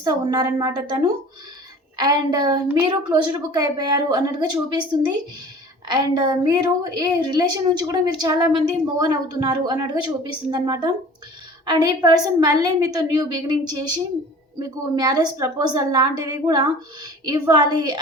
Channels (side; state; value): both; normal; correlation 0.44